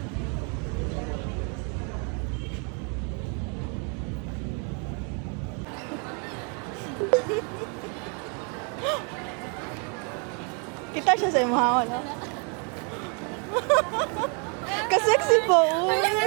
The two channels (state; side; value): quieter; left; 36.7 dB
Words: sa'yo mahawa, no? Kasexy po. Uy.